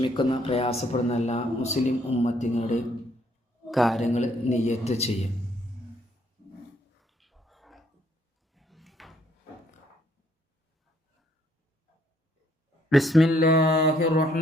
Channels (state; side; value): normal; both; correlation 0.67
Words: പ്രയാസപ്പെടുന്ന എല്ലാ മുസ്ലിം ഉമ്മത്തിങ്ങളുടെയും കാര്യങ്ങൾ നിയത്ത് ചെയ്യും. ബിസ്മില്ലാഹിർ